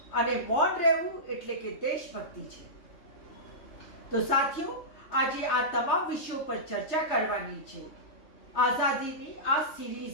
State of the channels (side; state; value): right; late; 3.2 ms